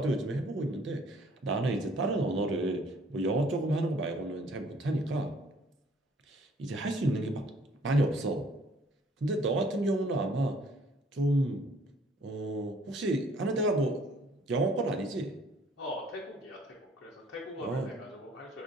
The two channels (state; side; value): normal; both; correlation 0.59